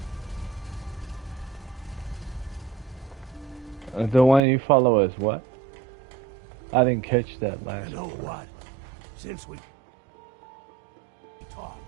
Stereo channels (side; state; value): left; drops out; at 4.4 s